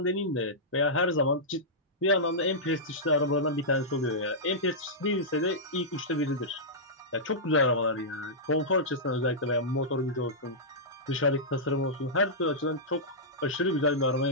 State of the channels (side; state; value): both; normal; correlation -0.13